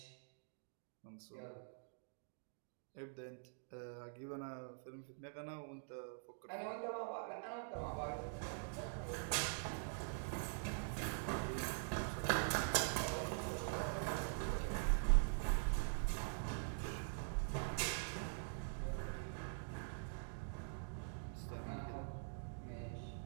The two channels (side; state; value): left; silent; digital silence